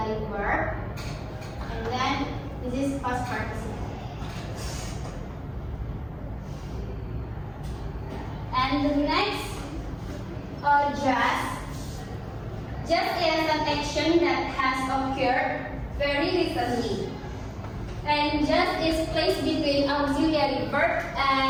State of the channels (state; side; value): identical; both; correlation 1.00